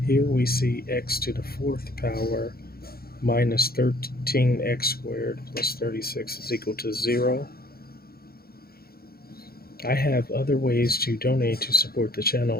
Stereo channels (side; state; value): right; late; 0.44 ms